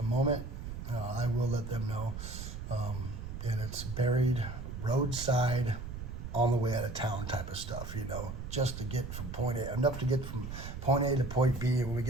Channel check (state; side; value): noise; right; rumble, 7 dB below the sound